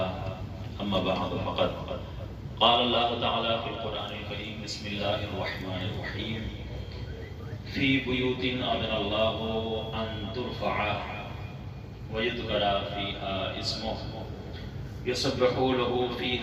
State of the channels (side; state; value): both; identical; correlation 1.00